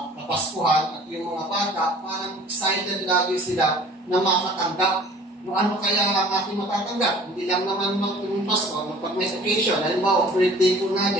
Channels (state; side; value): normal; both; correlation 0.49